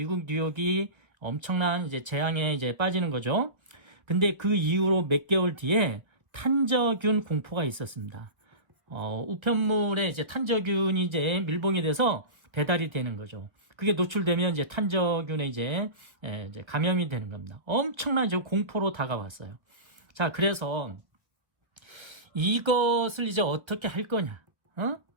뉴욕이 엄청난 이제 재앙에 이제 빠지는 거죠. 근데 그 이후로 몇 개월 뒤에 탄저균 공포가 있었습니다. 우편물에 이제 탄저균이 이제 밀봉이 돼서 배달이 되는 거죠. 그게 노출되면 이제 탄저균에 이제 감염이 되는 겁니다. 엄청난 이제 공포로 다가왔어요. 자, 그래서 이것을 이제 어떻게 할 거냐?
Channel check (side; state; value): left; late; 1.1 ms